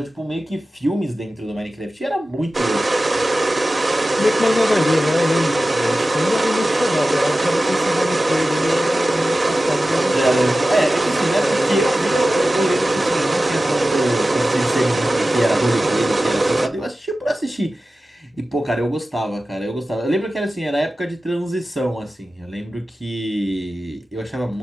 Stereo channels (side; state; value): both; normal; correlation 0.95